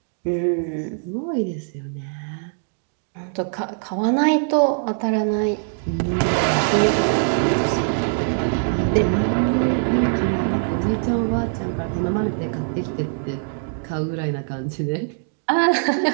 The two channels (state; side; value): silent; left; digital silence